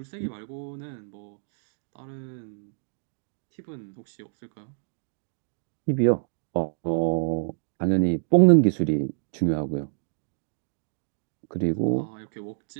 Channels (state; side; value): silent; left; digital silence